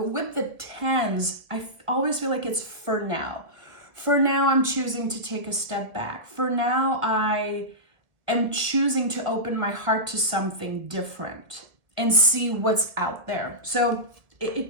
with the 10s, I always feel like it's for now. For now, I'm choosing to take a step back. For now, I am choosing to open my heart to something different and see what's out there. So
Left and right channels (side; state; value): left; late; 1.5 ms